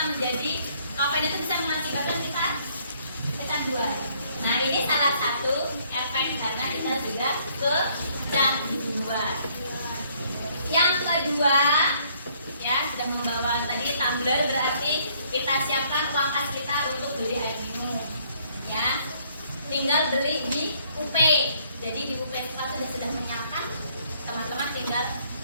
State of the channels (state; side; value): inverted; both; correlation -0.65